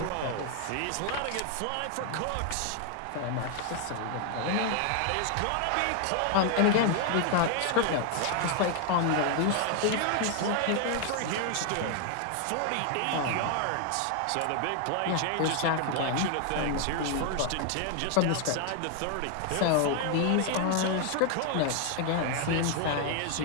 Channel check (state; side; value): different; both; correlation 0.00